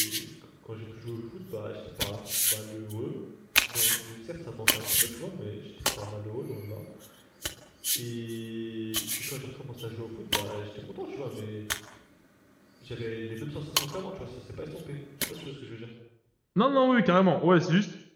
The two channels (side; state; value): both; identical; correlation 1.00